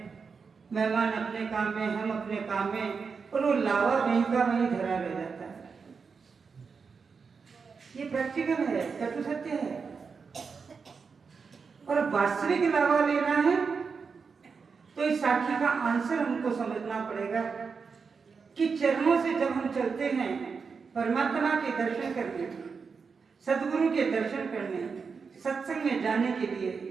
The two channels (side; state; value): left; quieter; 5.3 dB